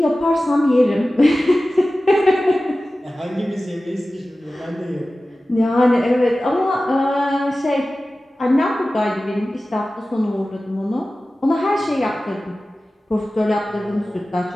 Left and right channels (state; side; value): normal; both; correlation 0.96